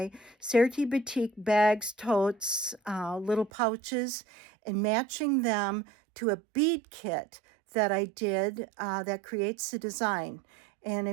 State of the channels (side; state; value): left; drops out; at 3.5 s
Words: Serti Batik bags, totes, little pouches, and matching them to a bead kit that I did that creates the design. And